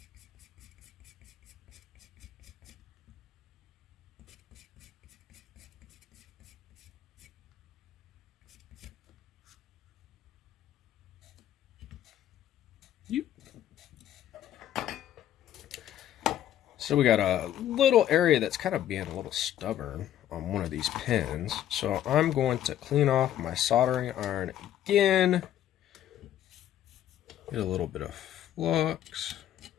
So we got a little area that's kind of being a little stubborn on one of these pins. So I'm going to clean off my soldering iron again. Get a little bit of flux.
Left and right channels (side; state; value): right; quieter; 11.5 dB